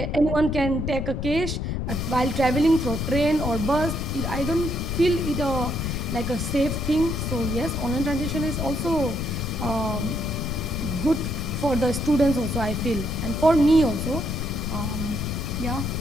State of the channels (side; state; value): left; noise; rumble, 2 dB below the sound